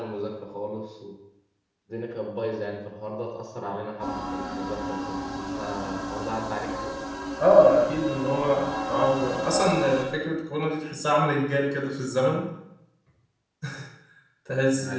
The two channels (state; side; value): identical; both; correlation 1.00